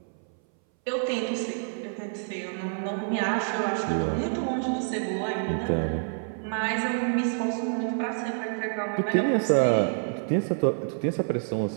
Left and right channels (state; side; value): silent; left; 60 dB below the other